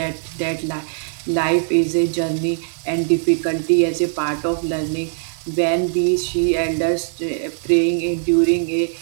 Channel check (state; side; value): silent; left; 65 dB below the other